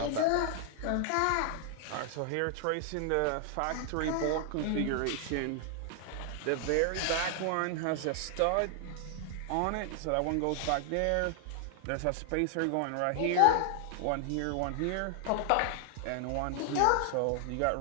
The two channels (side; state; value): both; different; correlation 0.00